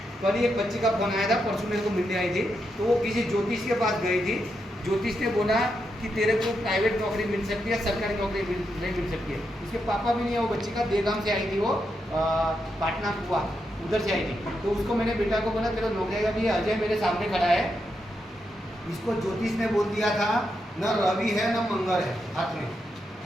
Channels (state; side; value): normal; both; correlation 0.83